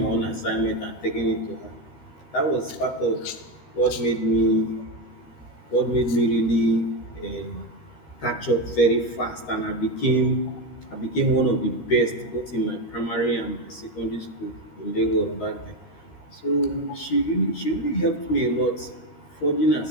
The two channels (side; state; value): right; late; 13 ms